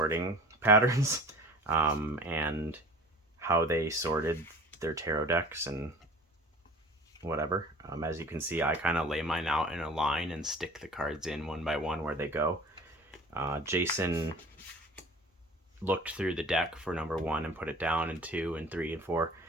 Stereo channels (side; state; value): both; normal; correlation 0.44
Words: patterns, and how they sorted their tarot decks and whatever. As you can see, I kind of lay mine out in a line and stick the cards in one by one where they go. Jason looked through the deck for number 1 and put it down in 2 and 3 and 4,